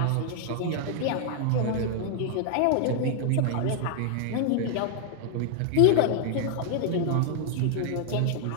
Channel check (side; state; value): both; different; correlation 0.00